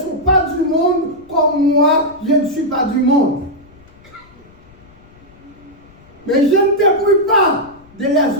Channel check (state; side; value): noise; left; rumble, 26 dB below the sound